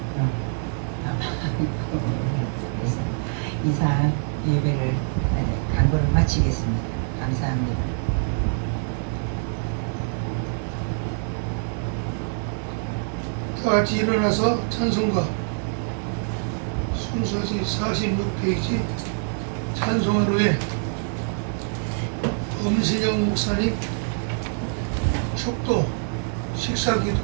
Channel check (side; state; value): left; silent; 62 dB below the other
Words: 이사 예배를 강구를 마치겠습니다. 감사합니다. 다 같이 일어나서 찬송가 순서지 46페이지 찬송하루에 엄신영 목사님 축도